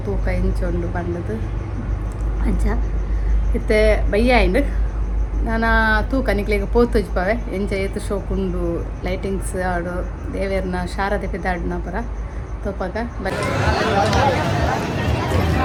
ತೂಕ ಇಂಚೊಂಡು ಪಂಡದು ಅಂಚ ಇತ್ತೆ ಬಯ್ಯ ಆಯ್ಂಡು ನಾನು ತೂಕ ನಿಕ್ಲಿಗೆ ಪೋತುಜಿ ಪವೆ ಎಂಚ ಏತು ಶೋಕುಂಡು ಲೈಟಿಂಗ್ಸ್ ಆಡು ದೇವೇರ್ನ ಶಾರದೆ ಪಿದಾಡ್ನ ಪರ ತೋಪಾಗ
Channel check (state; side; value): identical; both; correlation 1.00